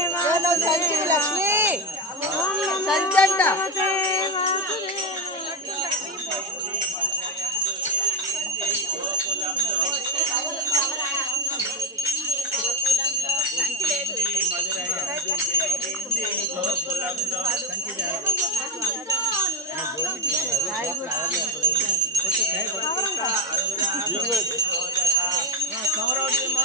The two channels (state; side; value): normal; both; correlation 0.14